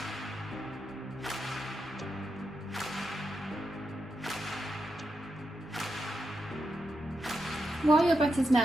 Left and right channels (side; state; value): both; normal; correlation 0.85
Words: While your butter's